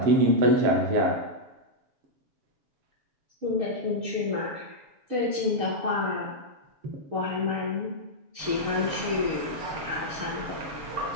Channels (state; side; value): late; left; 7.1 ms